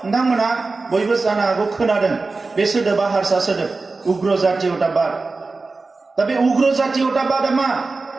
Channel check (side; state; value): left; quieter; 3.8 dB